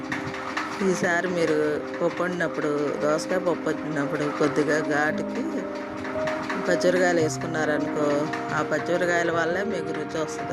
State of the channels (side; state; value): both; identical; correlation 1.00